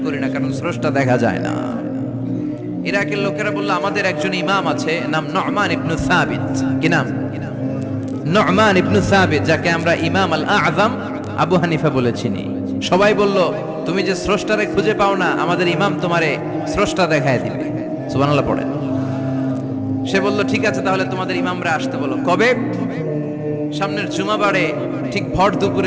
করি না, কারণ স্রষ্টা দেখা যায় না। ইরাকের লোকেরা বলল আমাদের একজন ইমাম আছে, নাম নু'মান ইবনে সাবিত। কি নাম? নু'মান ইবনে সাবিত, যাকে আমরা ইমাম আল আযম আবু হানিফা বলে চিনি। সবাই বলল তুমি যে স্রষ্টারে খুঁজে পাও না, আমাদের ইমাম তোমারে স্রষ্টা দেখায় দিবে। সুবহানাল্লাহ পড়ে। সে বলল ঠিক আছে, তাহলে তোমাদের ইমামরা আসতে বলো। কবে? সামনের জুমাবারে ঠিক ভর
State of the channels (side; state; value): both; identical; correlation 1.00